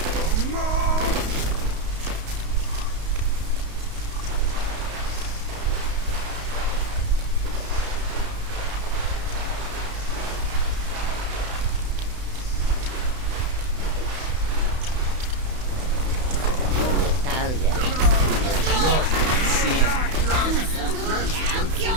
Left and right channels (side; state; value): left; late; 32 ms